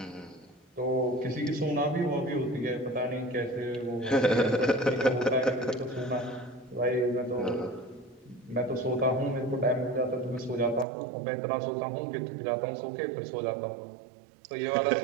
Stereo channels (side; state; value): left; drops out; at 10.9 s